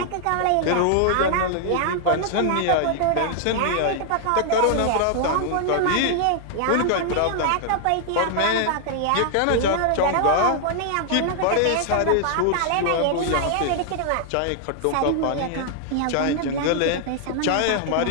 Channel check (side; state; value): both; different; correlation 0.00